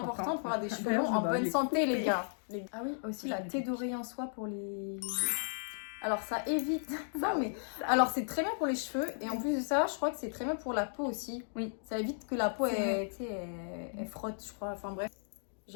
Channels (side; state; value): right; silent; digital silence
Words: pour avoir des cheveux longs en bonne santé, les gars. Ah oui, aussi la thé d'oreiller en soie pour les... Alors, ça évite... Non, mais... Alors, c'est très bien pour les cheveux. Et en plus de ça, je crois que c'est très bien pour la peau aussi. Oui. Ça évite que la peau, elle frotte, je crois. Enfin, bref.